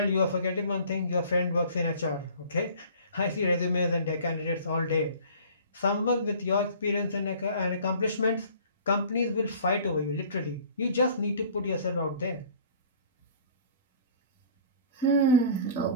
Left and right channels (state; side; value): inverted; both; correlation -0.48